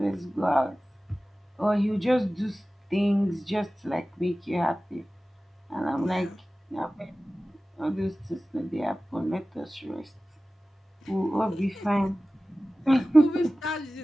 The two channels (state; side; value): normal; both; correlation 0.96